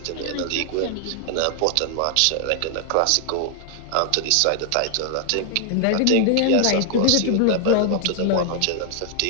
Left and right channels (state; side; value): different; both; correlation 0.00